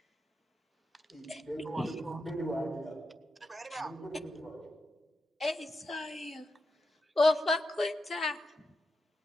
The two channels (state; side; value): normal; both; correlation 0.87